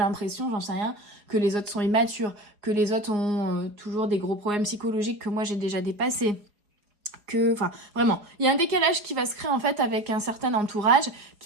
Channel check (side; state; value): left; late; 4.9 ms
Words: j'en sais rien, que les autres sont immatures, que les autres ont toujours des gros problèmes psychologiques que moi j'ai déjà dépassés. Enfin, vraiment, il y a un décalage qui va se créer en fait avec un certain entourage